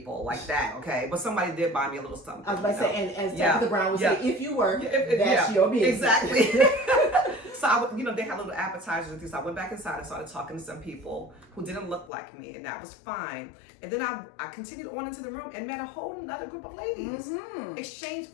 like that, okay? But somebody did buy me a little something. I was about to say, and as Tabitha Brown would say, if you were, that's your business. Exactly. So you know, they had little appetizers and things. So I went back inside and started talking to some people who didn't look like me, and that was fine. And then I continued on into the room and met a whole another group of ladies. Exchanged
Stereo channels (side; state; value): right; drops out; at 12.1 s